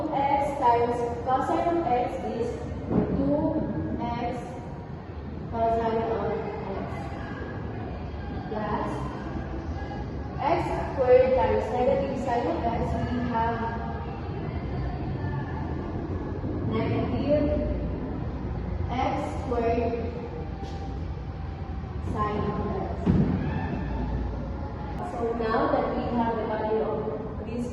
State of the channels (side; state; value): both; identical; correlation 1.00